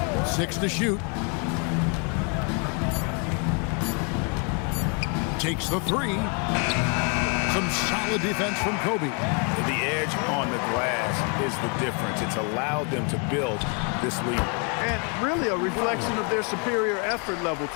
6 to shoot. Takes the 3. Some solid defense from Kobe. The edge on the glass is the difference. It's allowed them to build this lead. And really a reflection of their superior effort level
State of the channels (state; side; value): quieter; right; 37.1 dB